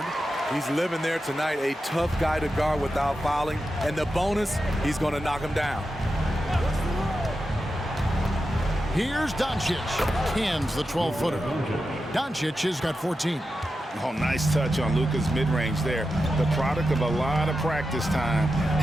He's living there tonight, a tough guy to guard without fouling. And the bonus, he's going to knock him down. Here's Doncic. Cans the 12-footer. Doncic has got 14. Oh, nice touch on Luka's mid-range there. The product of a lot of practice time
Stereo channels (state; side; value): normal; both; correlation 0.90